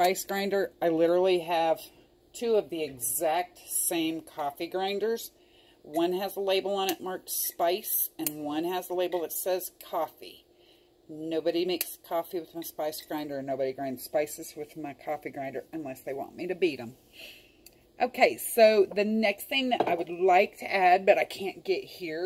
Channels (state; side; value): identical; both; correlation 1.00